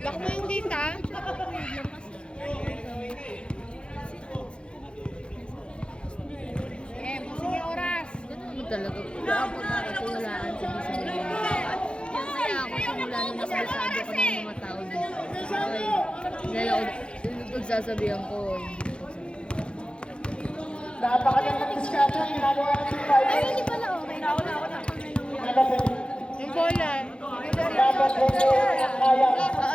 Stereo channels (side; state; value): right; late; 0.055 ms